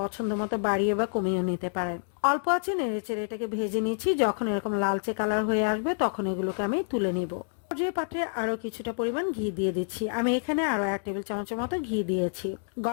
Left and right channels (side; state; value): right; silent; digital silence